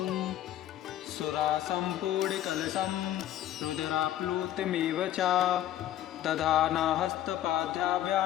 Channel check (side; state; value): right; quieter; 12.4 dB